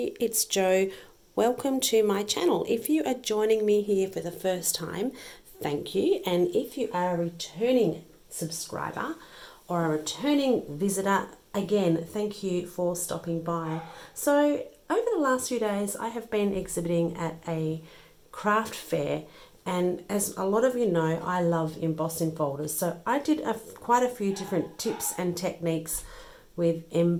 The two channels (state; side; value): identical; both; correlation 1.00